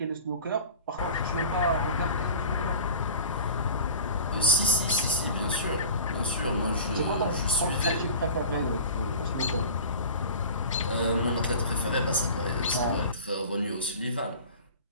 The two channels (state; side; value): inverted; both; correlation -0.38